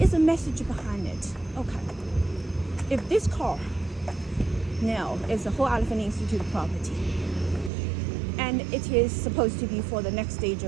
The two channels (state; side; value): drops out; left; at 7.7 s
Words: the message behind it? Okay. If this car now is the Whole Elephant Institute property, and it is supposed to be for the next stage